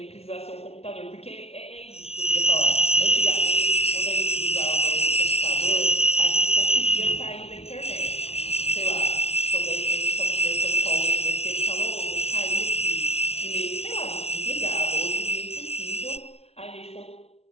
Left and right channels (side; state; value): right; late; 0.30 ms